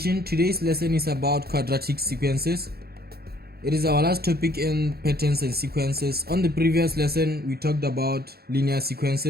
Today's lesson is about quadratic sequences. It is our last topic in patterns and sequences. On the previous lesson, we talked about linear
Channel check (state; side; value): late; left; 0.46 ms